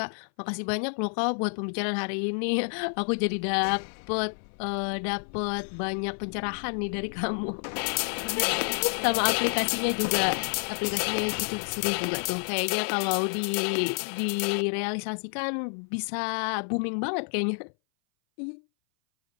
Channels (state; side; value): silent; right; 58 dB below the other